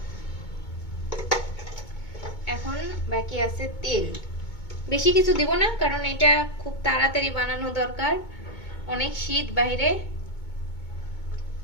এখন বাকি আছে তেল। বেশি কিছু দিব না, কারণ এটা খুব তাড়াতাড়ি বানানো দরকার, অনেক শীত বাইরে।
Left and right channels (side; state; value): right; late; 2.2 ms